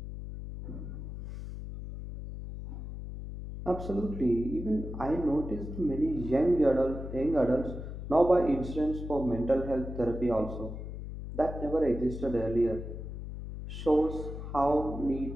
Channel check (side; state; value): left; noise; hum, 8 dB below the sound